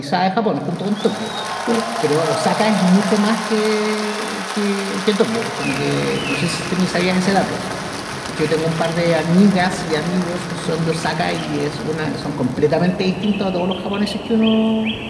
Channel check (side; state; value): both; identical; correlation 1.00